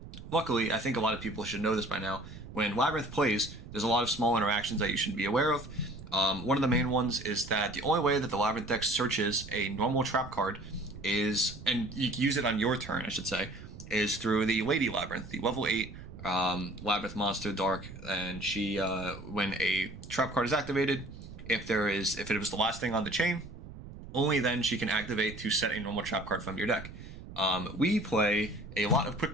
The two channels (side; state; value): right; noise; rumble, 14 dB below the sound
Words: luckily, I think a lot of people should know this by now. When Labyrinth plays, there's a lot of small interactions that you should be aware of. One of the main ones is that the only way that the Labyrinth deck searches a normal trap card is, and you can use it on your turn, I should say, is through the Lady Labyrinth, the level 8 Labyrinth monster Dark. And she, when a trap card is activated, if it was the last thing on the chain, only then she can activate to set a normal trap card from your deck. We play a lot of quick